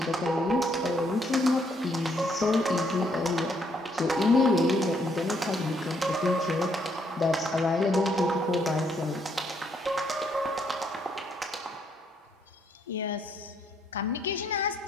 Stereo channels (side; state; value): both; normal; correlation 0.71